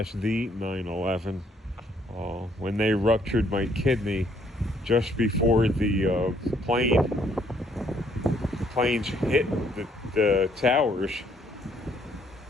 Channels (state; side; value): normal; both; correlation 0.67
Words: the 9/11, when they ruptured my kidney just before the planes hit the towers.